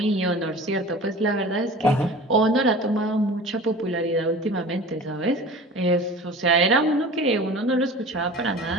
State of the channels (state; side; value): normal; both; correlation 0.39